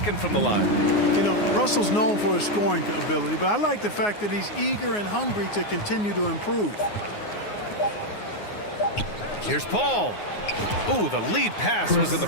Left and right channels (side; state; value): right; late; 9.6 ms